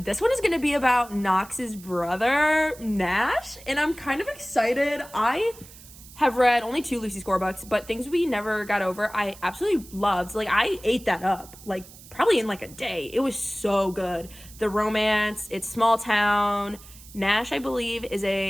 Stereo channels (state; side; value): noise; right; hiss, 20 dB below the sound